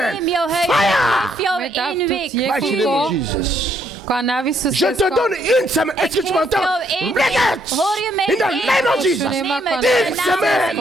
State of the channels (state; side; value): normal; both; correlation 0.71